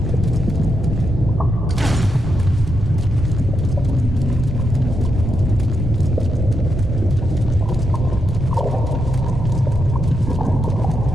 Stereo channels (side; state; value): both; normal; correlation 0.83